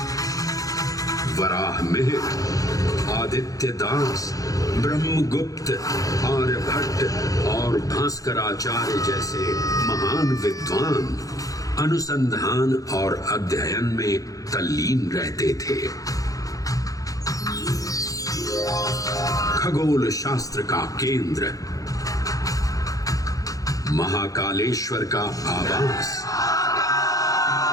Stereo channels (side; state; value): right; late; 0.17 ms